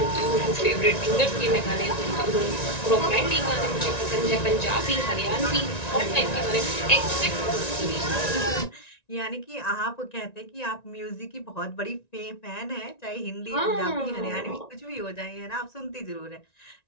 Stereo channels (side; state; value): right; late; 1.9 ms